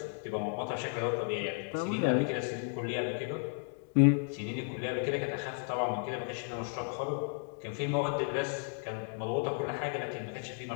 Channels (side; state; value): right; silent; 55 dB below the other